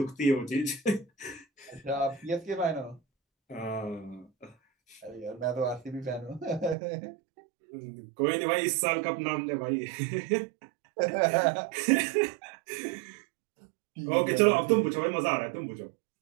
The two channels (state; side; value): drops out; left; at 6.8 s